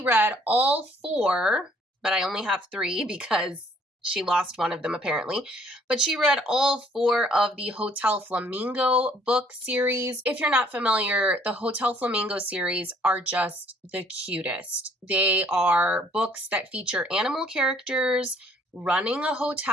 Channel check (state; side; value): normal; both; correlation 0.61